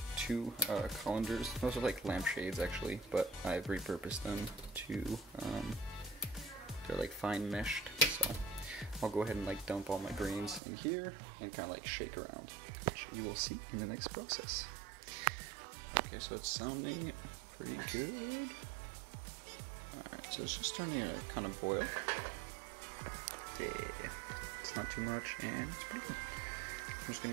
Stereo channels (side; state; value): left; drops out; at 10.6 s